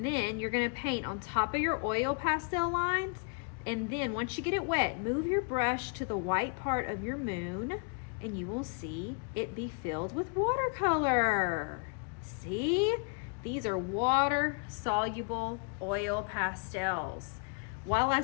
then you're gonna paint on top of your oil pastel lines, and then once you get it wet, move your brush to the white part of your moon, and you will see it be filled with watercolor. See? These are water-soluble oil pastels. While I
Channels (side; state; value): right; quieter; 35.3 dB